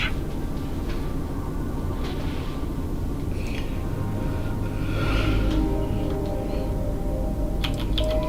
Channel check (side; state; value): both; identical; correlation 1.00